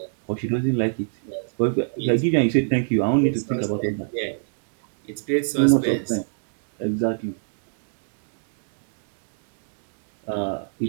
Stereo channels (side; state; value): left; silent; digital silence